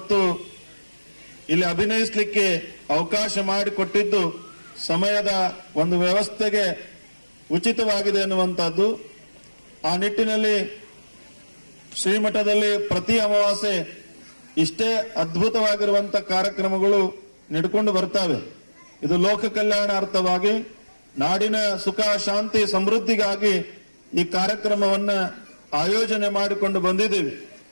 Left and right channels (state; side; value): inverted; both; correlation -1.00